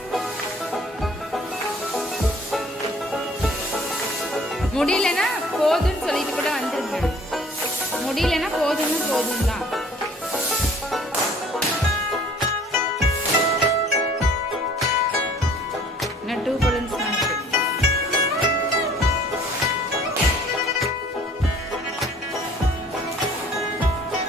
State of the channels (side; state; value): both; normal; correlation 0.54